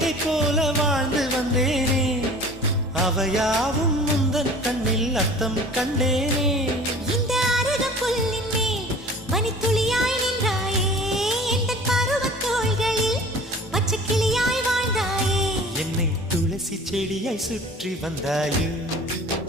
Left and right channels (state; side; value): normal; both; correlation 0.44